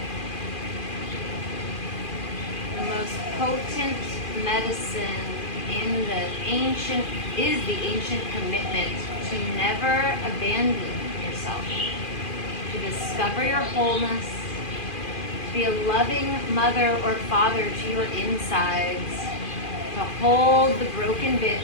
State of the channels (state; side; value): late; right; 2.4 ms